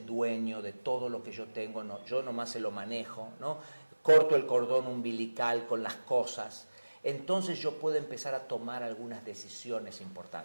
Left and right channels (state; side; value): inverted; both; correlation -1.00